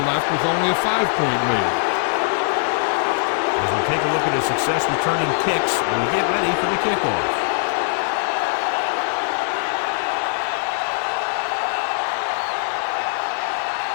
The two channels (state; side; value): silent; right; digital silence